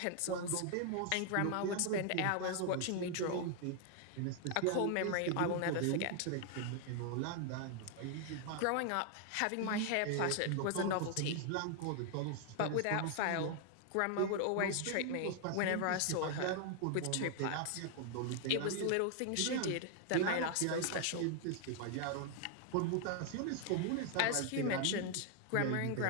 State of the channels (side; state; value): both; different; correlation 0.00